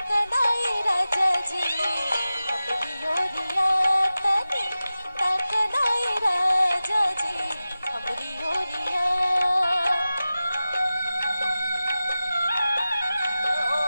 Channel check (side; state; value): both; inverted; correlation -0.95